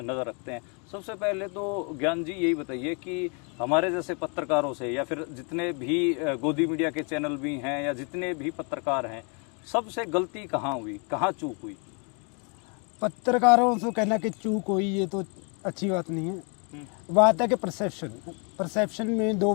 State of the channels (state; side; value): quieter; right; 36.3 dB